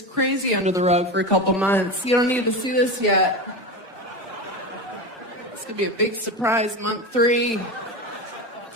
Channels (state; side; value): normal; both; correlation 0.22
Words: crazy under the rug for a couple months. You don't need to see this yet. It's gonna be a big surprise, month 3.